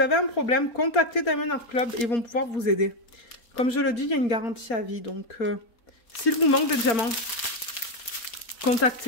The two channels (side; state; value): right; late; 4.3 ms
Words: un problème, contactez Diamond Art Club et ils vont pouvoir vous aider. Comme je le dis, il y a une garantie à vie. Donc, s'il vous manque des diamants,